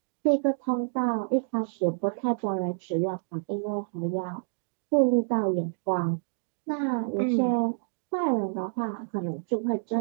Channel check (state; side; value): silent; left; digital silence